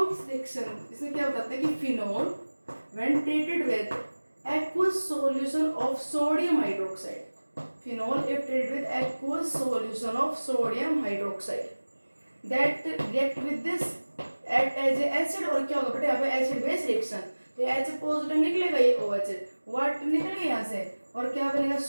रिएक्शन इसमें क्या बताते हैं कि phenol when treated with aqueous solution of sodium hydroxide, phenol if treated with aqueous solution of sodium hydroxide that react with this act as a acid। और क्या होगा बेटा यहाँ पे एसिड बेस रिएक्शन, तो H पॉजिटिव निकलेगा, ये OH वाट निकलेगा यहाँ से और क्या बनेगा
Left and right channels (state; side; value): inverted; both; correlation -1.00